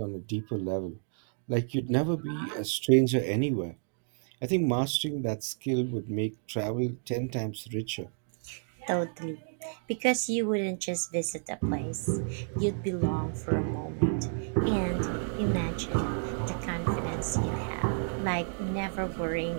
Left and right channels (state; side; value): silent; left; digital silence